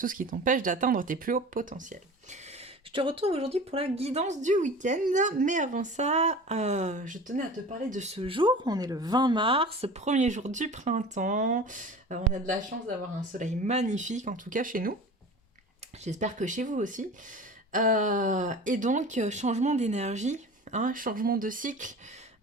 ce qui t'empêche d'atteindre tes plus hauts potentiels. Je te retrouve aujourd'hui pour la guidance du week-end, mais avant ça, je tenais à te parler de ce jour. On est le 20 mars, premier jour du printemps. On a de la chance d'avoir un soleil magnifique, en tout cas chez nous. J'espère que chez vous aussi. Et donc, changement d'énergie, hein, changement de cycle.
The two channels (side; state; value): both; normal; correlation 0.37